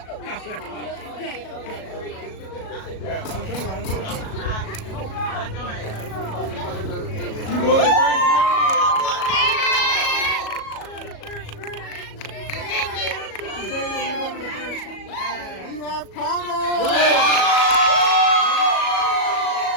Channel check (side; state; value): right; late; 37 ms